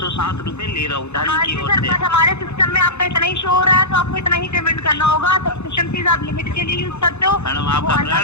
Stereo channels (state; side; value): late; right; 0.81 ms